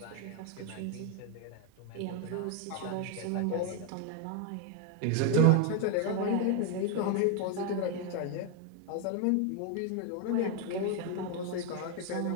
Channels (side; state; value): both; different; correlation 0.01